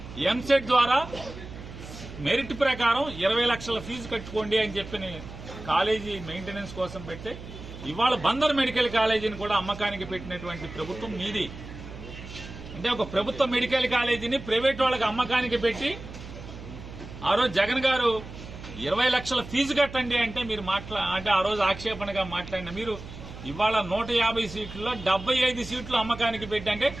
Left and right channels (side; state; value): right; noise; hum, 13 dB below the sound